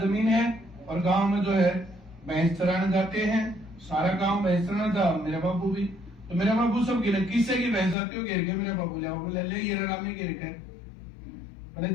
है और गांव में जो है भैंस चराने जाते हैं सारा गांव भैंस चराना था मेरा बाबू भी तो मेरा बाबू सब गिर किससे की भैंस आती हो गिर के मेरा बाबू ले ये राम में गिर कर बोले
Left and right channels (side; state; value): right; drops out; at 8.0 s